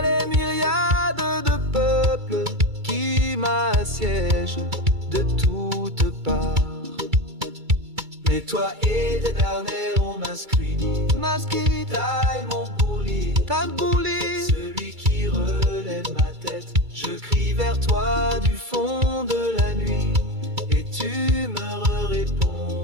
les myriades de peuples qui m'assiègent de toutes parts. Mais toi, Éternel, on masquerie, taille mon bourli, celui qui relève ma tête. Je crie vers toi du fond de la nuit, et tu me réponds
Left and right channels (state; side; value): late; left; 2.3 ms